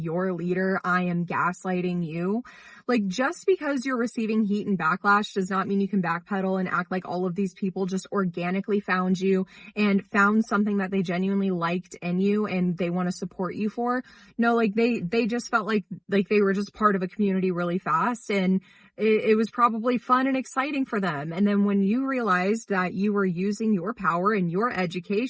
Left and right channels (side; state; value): both; identical; correlation 1.00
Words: leader, I am gaslighting you. Like, just because you're receiving heat and backlash does not mean you can backpedal and act like all of these people just organically found you and found something that they genuinely liked in you and they want to support you for. No, like they just felt like they were just part of a community really fast, and it was probably fun and exciting for them. And then when you realized that you were using your power and your